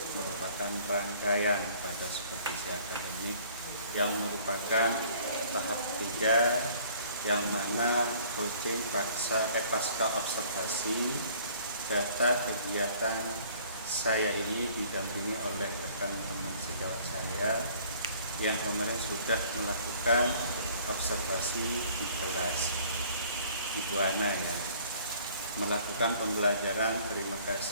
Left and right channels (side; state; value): both; inverted; correlation -0.54